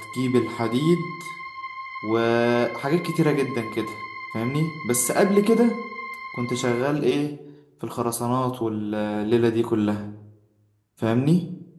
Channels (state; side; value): identical; both; correlation 1.00